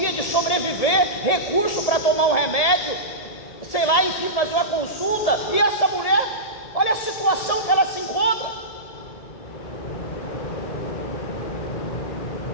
de sobreviver, recurso para tomar um remédio, sei lá, enfim, fazer uma consulta. E essa mulher, olha a situação que ela se encontra.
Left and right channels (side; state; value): right; late; 1.7 ms